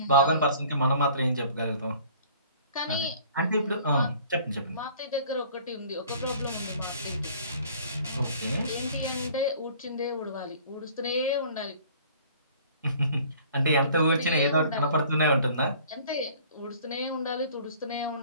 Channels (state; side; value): inverted; both; correlation -0.52